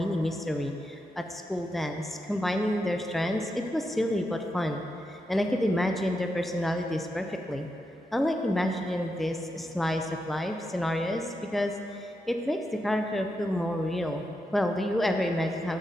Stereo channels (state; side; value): normal; both; correlation 0.85